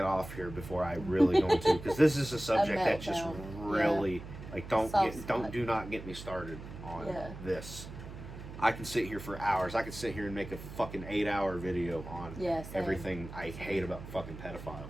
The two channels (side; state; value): right; noise; hum, 12 dB below the sound